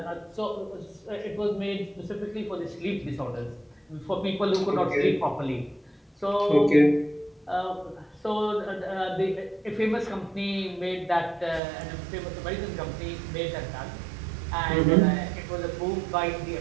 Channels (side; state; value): left; drops out; at 11.6 s